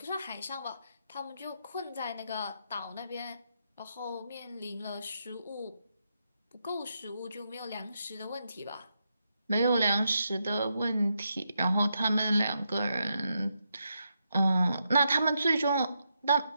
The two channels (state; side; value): inverted; both; correlation -0.83